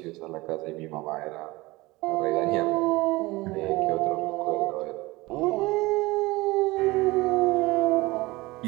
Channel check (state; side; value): quieter; left; 21.3 dB